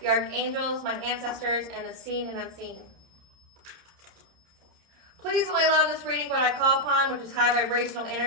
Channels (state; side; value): late; left; 30 ms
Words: Archangels, my ancestors, and the seen and unseen. Please only allow in this reading what I call upon, which is high vibrational